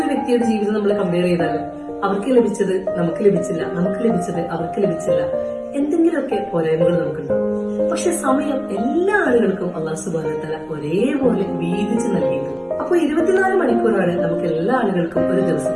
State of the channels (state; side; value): identical; both; correlation 1.00